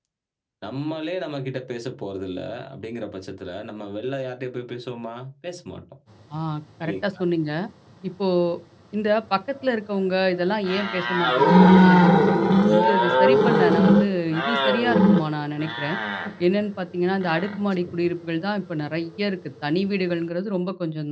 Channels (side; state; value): both; identical; correlation 1.00